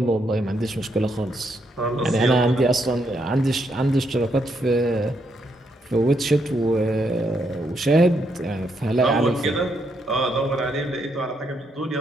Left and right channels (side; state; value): both; normal; correlation 0.77